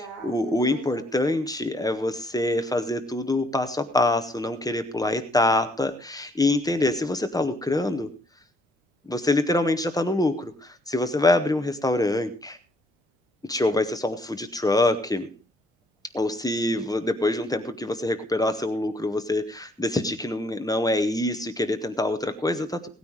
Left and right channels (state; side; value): normal; both; correlation 0.66